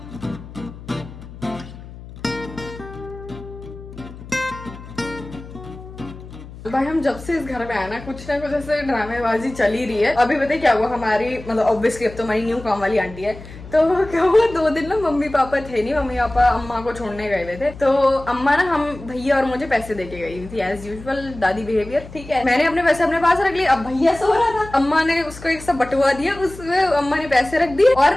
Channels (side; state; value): left; noise; hum, 15 dB below the sound